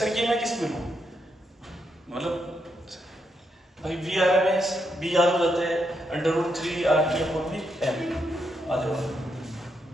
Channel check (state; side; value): normal; both; correlation 0.80